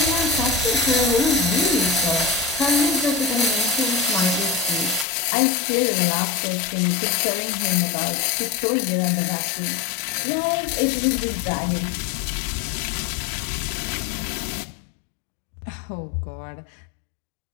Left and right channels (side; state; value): right; drops out; at 5.1 s